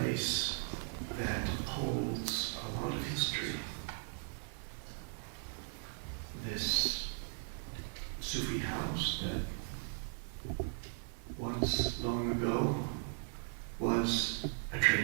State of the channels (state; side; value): silent; left; 52 dB below the other